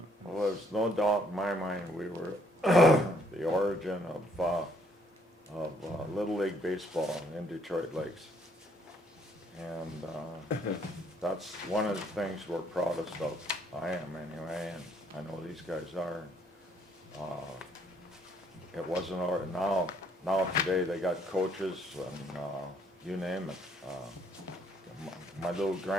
well, there's no doubt in my mind we were the origin of Little League Baseball in Detroit Lakes. And that's one of the things we're proudest of. I am anyway, and I know these guys are. It wasn't, now today they got coaches and you name it. My little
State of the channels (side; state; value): both; normal; correlation 0.67